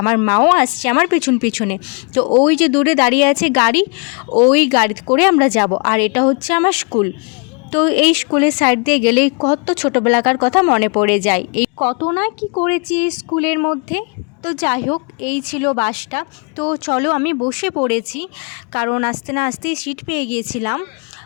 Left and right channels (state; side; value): quieter; right; 36.6 dB